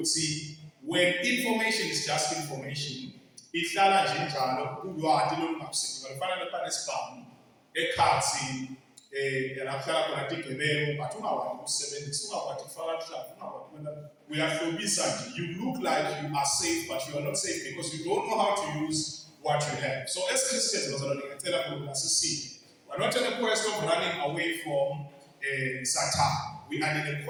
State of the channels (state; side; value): identical; both; correlation 1.00